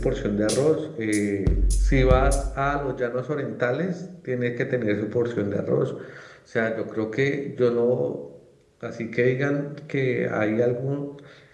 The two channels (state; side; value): identical; both; correlation 1.00